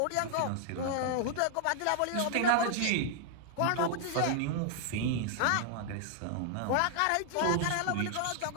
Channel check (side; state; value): both; different; correlation 0.00